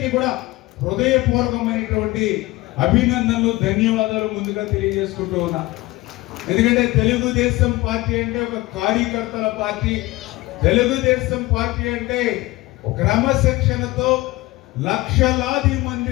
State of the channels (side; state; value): right; quieter; 20.1 dB